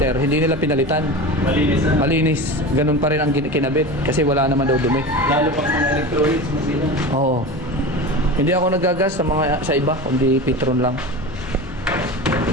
hindi nila pinalitan. Malinis na. Malinis. Ganun pa rin ang kinabit kasi wala naman daw dumi. Lalo pang mga electronics mo sila. Oo. Hindi ako nagagas sa iba, kundi Petron lang.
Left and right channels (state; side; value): normal; both; correlation 0.29